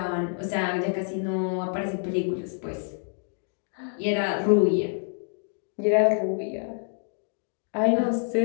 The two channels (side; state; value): right; silent; 60 dB below the other